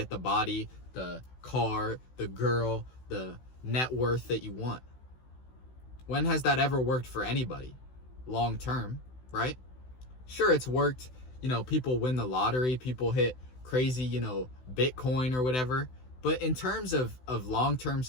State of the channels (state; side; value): late; right; 16 ms